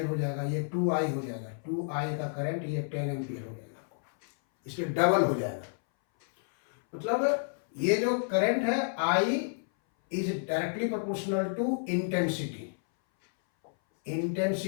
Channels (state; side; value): silent; right; 58 dB below the other